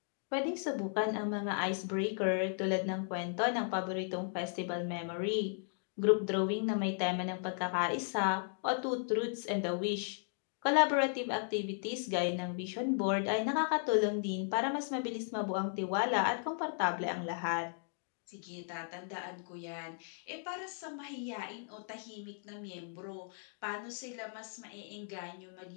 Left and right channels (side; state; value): right; silent; digital silence